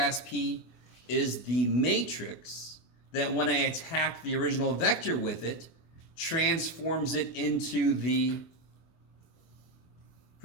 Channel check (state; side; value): late; right; 24 ms